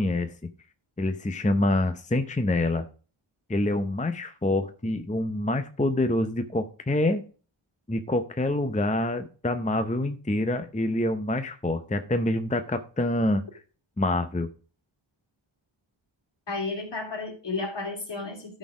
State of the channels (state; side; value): normal; both; correlation 0.63